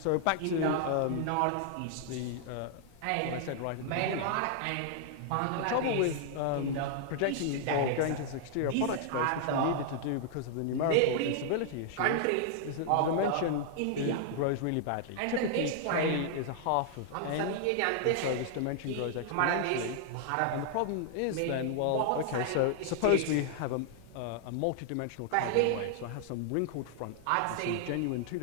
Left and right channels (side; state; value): both; different; correlation -0.01